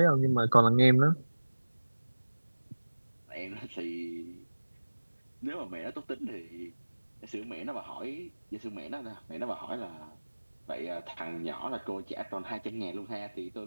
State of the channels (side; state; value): both; inverted; correlation -1.00